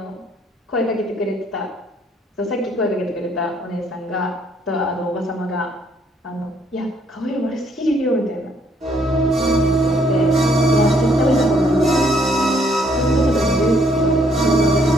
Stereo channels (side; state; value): both; normal; correlation 0.67